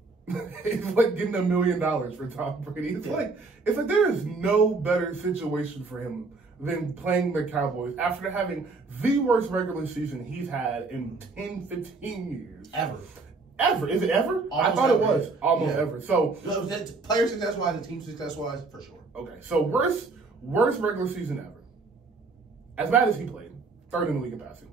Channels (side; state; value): left; quieter; 3.9 dB